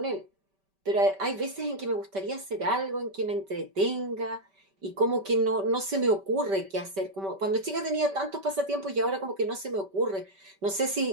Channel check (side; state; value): left; late; 5.1 ms